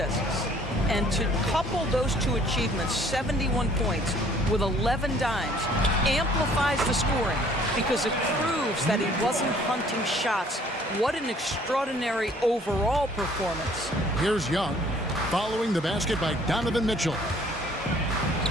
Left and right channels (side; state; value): both; normal; correlation 0.58